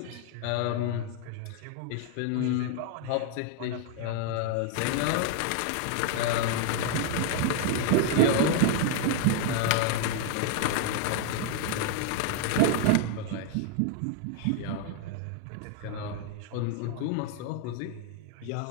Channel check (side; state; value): both; different; correlation 0.00